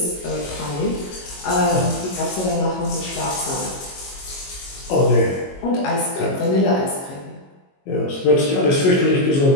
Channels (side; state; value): right; late; 22 ms